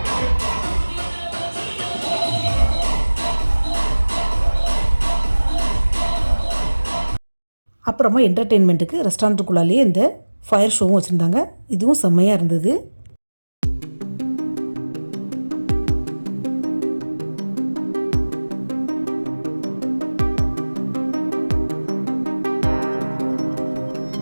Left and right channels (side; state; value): both; inverted; correlation -1.00